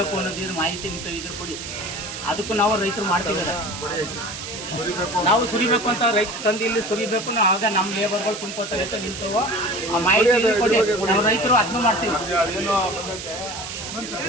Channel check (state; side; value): noise; right; hiss, 9 dB below the sound